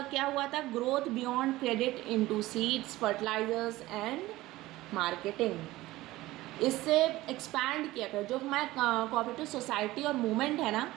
क्या हुआ था, growth beyond credit into seeds, fertilisers and marketing. इससे एक्सपैंड किया गया जो हमारा कोऑपरेटिव सोसाइटी और मूवमेंट है ना,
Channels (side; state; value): left; quieter; 17.7 dB